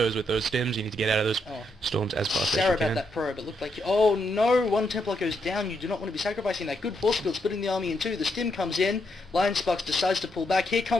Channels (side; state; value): both; normal; correlation 0.79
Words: with those stims. You need to get out of those storms as fast as you can. Sorry about that probe. It looked like... Oh no! One Templar goes down. You do not want to be sacrificing that good force field, splitting the army in 2. The stim comes in. Lionsaks decides to pull back. Here